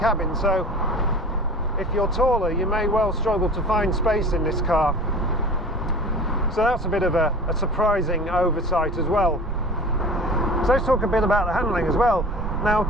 So if you're taller, you may well struggle to find space in this car. So that's a bit of a surprising oversight as well. So let's talk a bit about the handling as well. Now, of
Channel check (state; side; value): normal; both; correlation 0.39